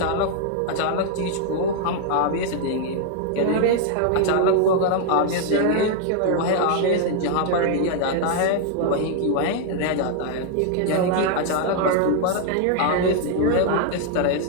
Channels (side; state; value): both; different; correlation 0.00